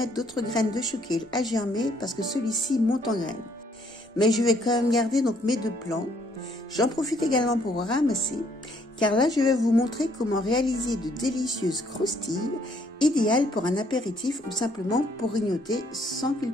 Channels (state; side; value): normal; both; correlation 0.66